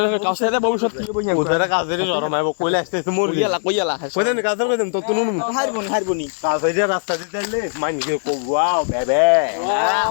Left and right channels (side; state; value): right; silent; digital silence